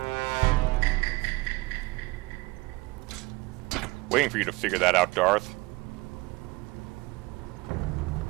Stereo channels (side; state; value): left; quieter; 22.3 dB